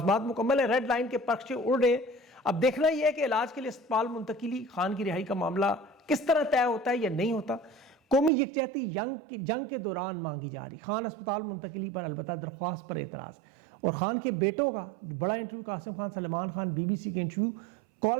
مکمل ہے، ریڈ لائن کے پرچے اڑ رہے ہیں۔ اب دیکھنا یہ ہے کہ علاج کے لیے اسپتال منتقلی، خان کی رہائی کا معاملہ کس طرح طے ہوتا ہے یا نہیں ہوتا۔ قومی یکجہتی جنگ کے دوران مانگی جا رہی، خان اسپتال منتقلی پر البتہ درخواست پر اعتراض، اور خان کے بیٹوں کا بڑا انٹرویو، قاسم خان، سلمان خان، BBC کے انٹرویو،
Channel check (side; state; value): left; drops out; at 8.3 s